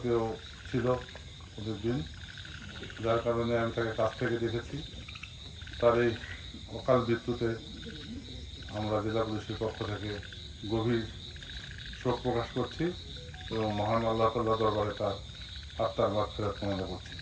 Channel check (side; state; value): both; identical; correlation 1.00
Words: ছিল ওদের দিন, যার কারণে আমি তাকে কাছ থেকে দেখেছি। তার এই অকাল মৃত্যুতে আমরা জেলা পুলিশের পক্ষ থেকে গভীর শোক প্রকাশ করছি এবং মহান আল্লাহ তাআলার দরবারে তার আত্মার মাগফিরাত কামনা করছি।